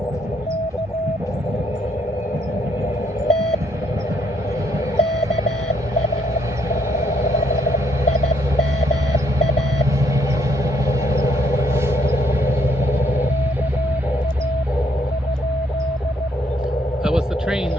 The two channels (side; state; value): both; normal; correlation 0.70